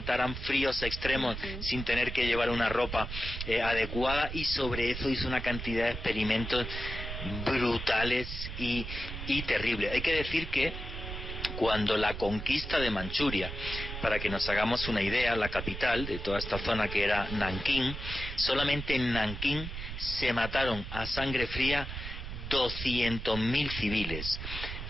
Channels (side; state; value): right; noise; rumble, 7 dB below the sound